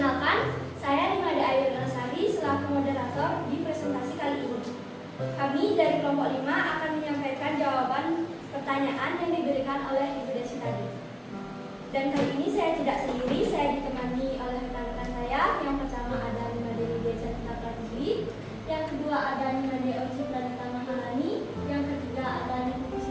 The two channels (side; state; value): both; identical; correlation 1.00